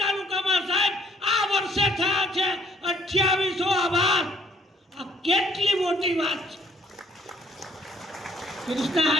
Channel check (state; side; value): normal; both; correlation 0.63